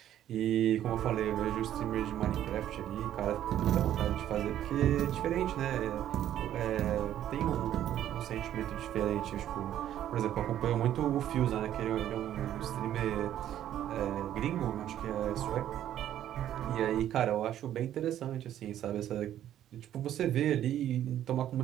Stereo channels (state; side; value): quieter; left; 11.5 dB